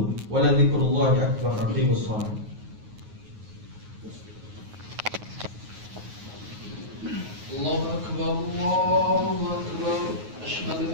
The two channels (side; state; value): left; late; 9.4 ms